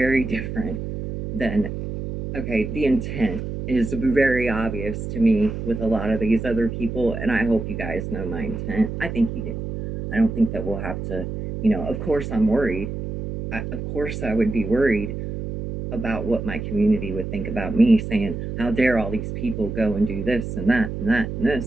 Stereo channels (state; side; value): noise; right; hum, 6 dB below the sound